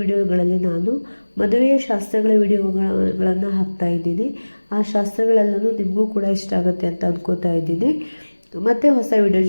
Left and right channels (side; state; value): both; inverted; correlation -1.00